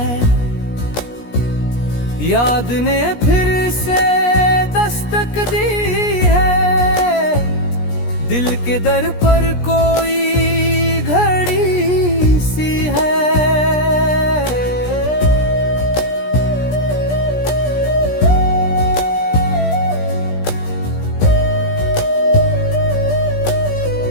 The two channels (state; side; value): late; right; 17 ms